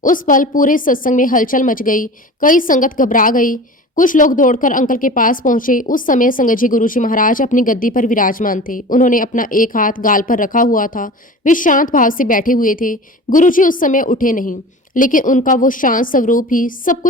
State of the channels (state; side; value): normal; both; correlation 0.36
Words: उस पल पूरे सत्संग में हलचल मच गई। कई संगत घबरा गई। कुछ लोग दौड़कर अंकल के पास पहुंचे। उस समय संगत जी, गुरु जी महाराज अपनी गद्दी पर विराजमान थे। उन्होंने अपना एक हाथ गाल पर रखा हुआ था। वे शांत भाव से बैठे हुए थे। गुरु जी उस समय उठे नहीं, लेकिन उनका वो शांत स्वरूप ही सब